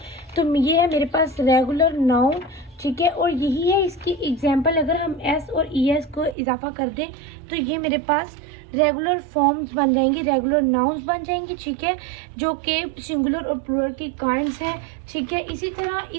तो ये है मेरे पास रेगुलर नाउन। ठीक है, और यही है इसकी एग्जाम्पल, अगर हम एस और एस को इजाफा कर दें तो ये मेरे पास रेगुलर फॉर्म्स बन जाएंगी, रेगुलर नाउन्स बन जाएंगी। ठीक है, जो कि सिंगुलर और प्लूरल की काइंड्स हैं। ठीक है, इसी तरह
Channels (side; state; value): left; drops out; at 6.4 s